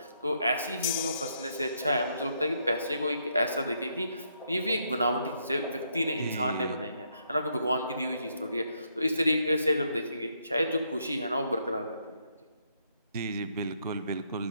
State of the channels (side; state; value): both; inverted; correlation -0.75